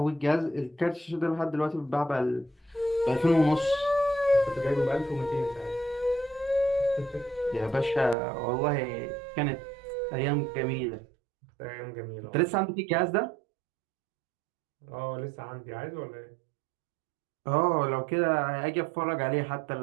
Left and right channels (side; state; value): left; drops out; at 8.2 s